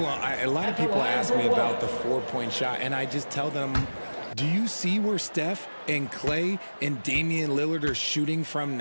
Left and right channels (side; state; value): both; inverted; correlation -1.00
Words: lot of people ask me about the 4-point shot, and I just tell them, do you see where Steph and Clay and Damian Lillard are shooting from